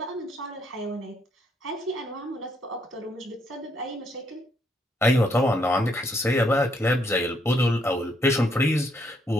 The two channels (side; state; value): both; normal; correlation 0.72